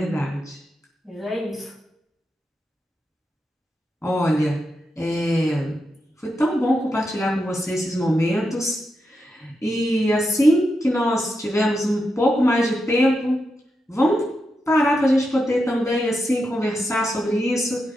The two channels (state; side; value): normal; both; correlation 0.86